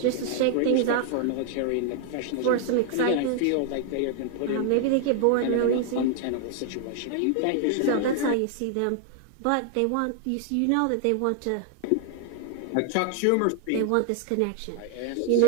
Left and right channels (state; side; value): different; both; correlation 0.00